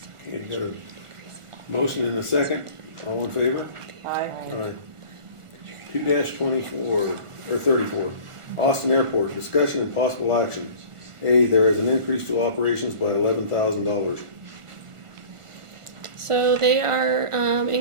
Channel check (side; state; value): left; late; 1.4 ms